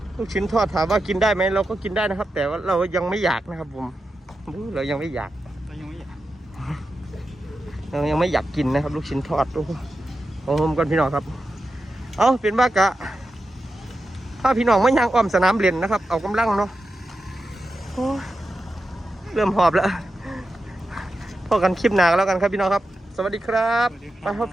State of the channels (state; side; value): normal; both; correlation 0.90